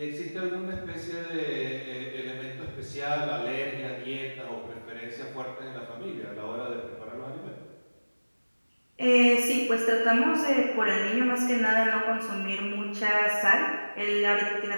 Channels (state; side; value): inverted; both; correlation -1.00